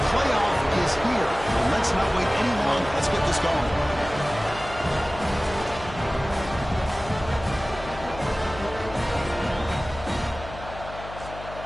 playoff is here. Let's not wait any longer. Let's get this going.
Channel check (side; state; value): left; noise; hum, 13 dB below the sound